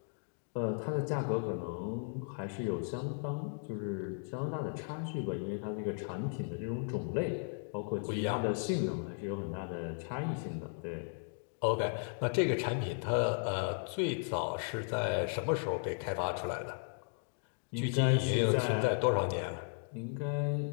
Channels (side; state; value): right; silent; digital silence